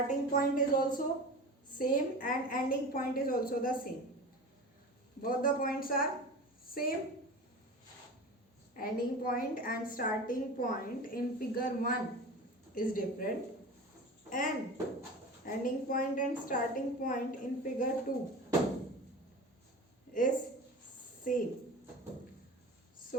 point is also same and ending point is also the same. Both the points are same. Ending point and starting point in figure 1 is different, and ending point and starting point in figure 2 is same.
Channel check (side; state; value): both; normal; correlation 0.33